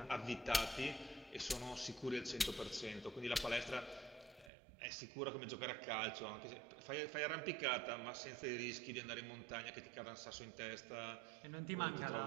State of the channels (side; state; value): left; drops out; at 4.5 s